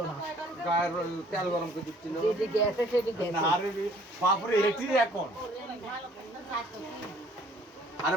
না গায়ের তেল গরম করে দিচ্ছিল। যেদিকে গেছে সেদিকে গেছে আরে বাপরে এটি এখন। আরে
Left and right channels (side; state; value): both; normal; correlation 0.57